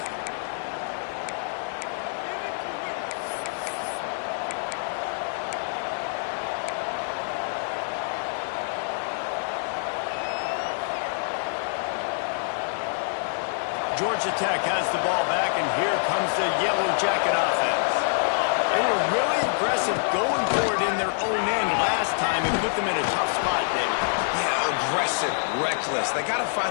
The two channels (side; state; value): right; silent; digital silence